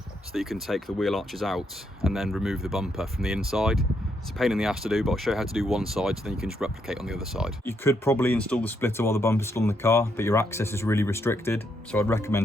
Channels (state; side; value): normal; both; correlation 0.77